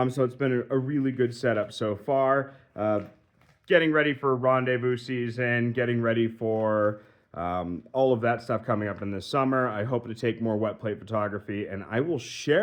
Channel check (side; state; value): both; identical; correlation 1.00